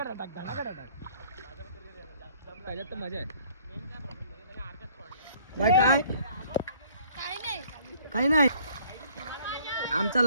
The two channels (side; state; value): both; inverted; correlation -0.58